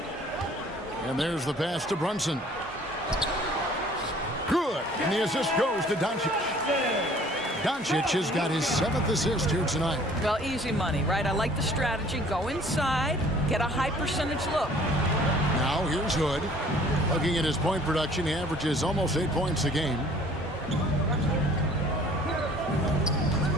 And there's the pass to Brunson. Good. And the assist goes to Doncic. Doncic has got his 7th assist here tonight. Well, easy money, right? I like the strategy. Go inside, get a high percentage look. Now here's Hood. Looking at his point production, he averages almost 8 points a game.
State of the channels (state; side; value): normal; both; correlation 0.53